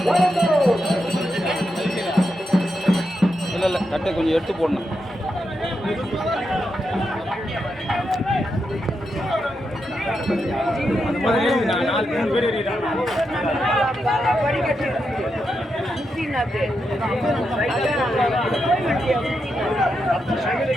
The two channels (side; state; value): both; normal; correlation 0.85